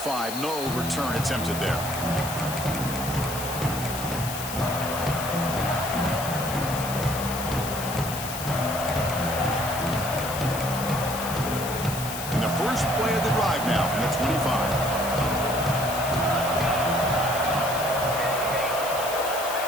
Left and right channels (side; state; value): left; noise; hiss, 8 dB below the sound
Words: no return attempted there. First play of the drive now from the 25.